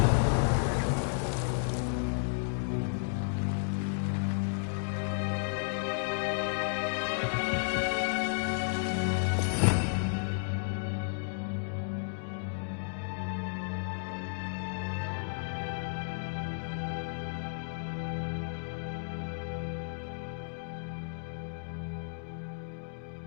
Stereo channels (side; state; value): right; silent; digital silence